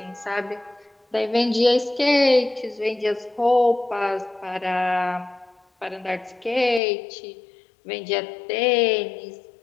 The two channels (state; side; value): drops out; right; at 6.8 s